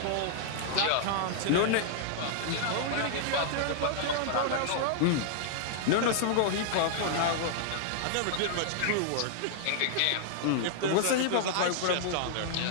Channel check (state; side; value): different; both; correlation -0.01